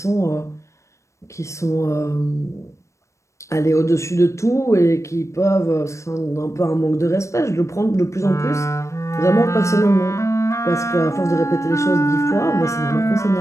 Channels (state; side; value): late; right; 0.14 ms